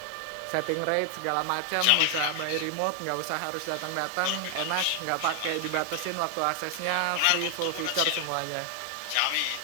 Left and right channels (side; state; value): both; different; correlation 0.00